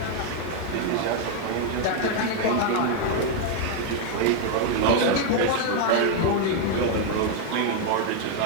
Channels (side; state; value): both; different; correlation 0.00